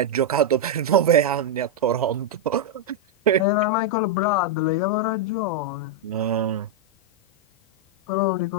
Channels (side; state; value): both; normal; correlation -0.01